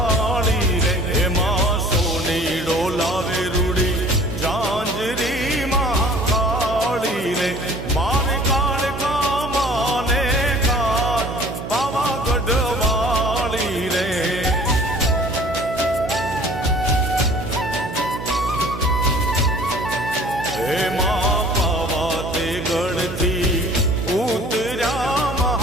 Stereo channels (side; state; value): right; noise; hum, 8 dB below the sound